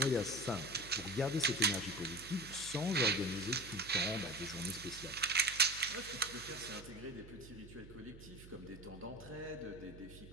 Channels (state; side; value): noise; right; hum, 16 dB below the sound